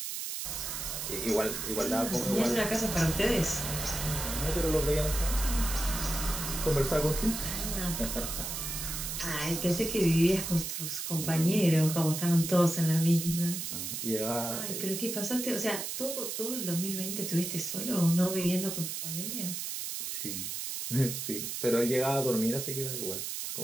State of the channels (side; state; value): right; noise; hiss, 4 dB below the sound